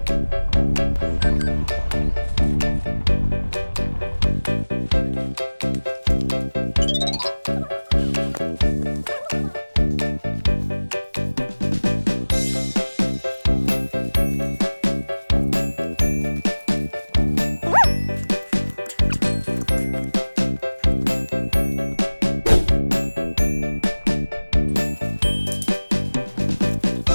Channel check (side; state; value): both; inverted; correlation -1.00